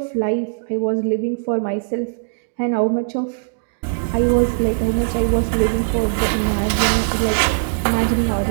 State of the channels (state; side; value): silent; left; digital silence